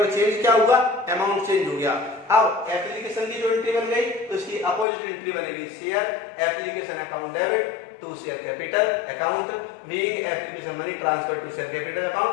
चेंज क्या हुआ? अमाउंट चेंज हो गया। अब एप्लीकेशन की जो एंट्री बन गई तो इसकी अपोजिट एंट्री बनेगी share application account debit to share capital account being application money transfer to share capital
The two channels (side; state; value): right; drops out; at 4.9 s